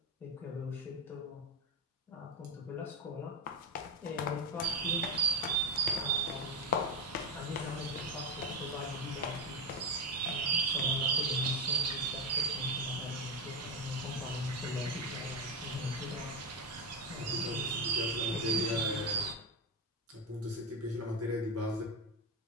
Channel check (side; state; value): both; normal; correlation 0.12